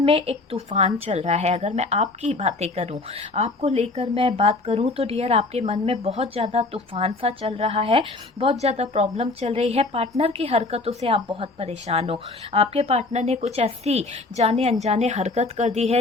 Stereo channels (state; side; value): quieter; right; 3.3 dB